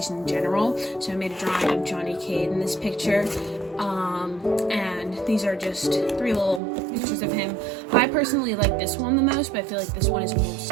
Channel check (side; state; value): left; drops out; at 6.6 s